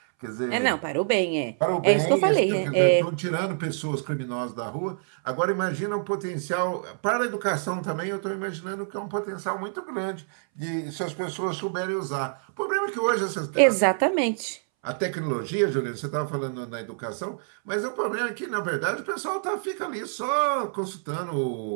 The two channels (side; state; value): left; silent; 61 dB below the other